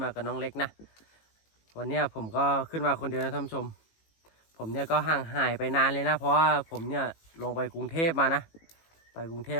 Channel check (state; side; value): late; right; 18 ms